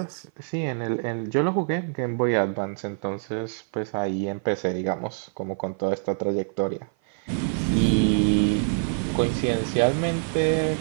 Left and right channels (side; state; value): left; silent; 55 dB below the other